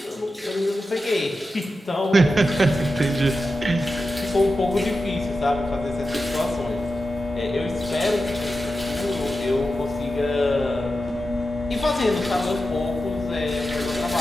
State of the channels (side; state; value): both; normal; correlation 0.91